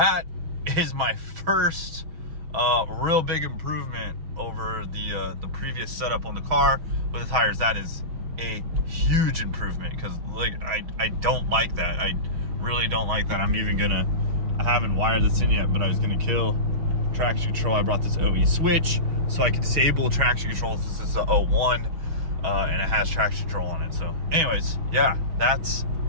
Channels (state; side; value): late; left; 6.3 ms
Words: is my first real big improvement over the previous setup on the car with the tires. That is a huge improvement because like I don't like that. I really don't like that. I haven't wired this in yet, but I was gonna kill traction control. I brought this OE switch so I can disable traction control. This is the 01 and it has traction control on it. So anyways, yeah, that's